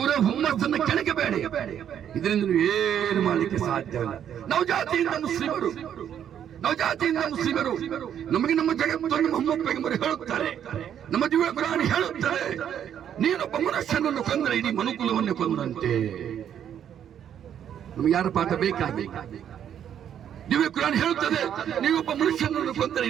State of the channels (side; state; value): left; quieter; 9.4 dB